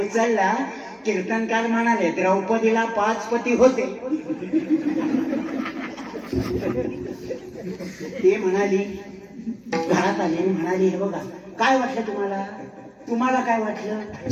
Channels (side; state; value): both; identical; correlation 1.00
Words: कीर्तनकार म्हणाले, द्रौपदीला 5 पती होते. ते म्हणाली, घरात आली आणि म्हणाली, हे बघा काय वाटलं तुम्हाला? तुम्हाला काय वाटलं?